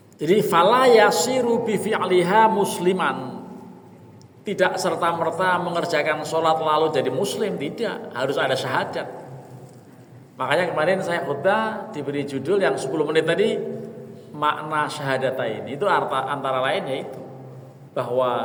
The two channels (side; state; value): both; identical; correlation 1.00